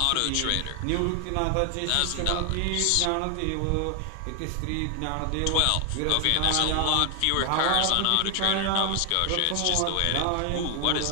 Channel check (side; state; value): both; different; correlation 0.00